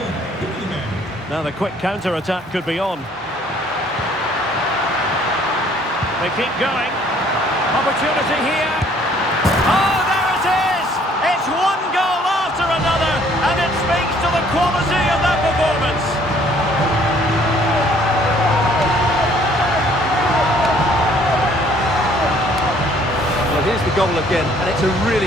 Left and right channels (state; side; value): normal; both; correlation 0.60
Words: Laliga. Now the quick counter-attack could be on. They keep going. Opportunity here. Oh, there it is! It's one goal after another, and it speaks to the quality of that performance. Well, here's the goal again, and it's a